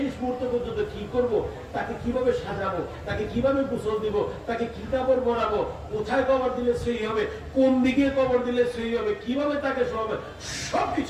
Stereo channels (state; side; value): identical; both; correlation 1.00